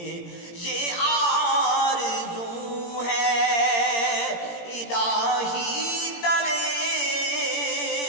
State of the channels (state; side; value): late; right; 17 ms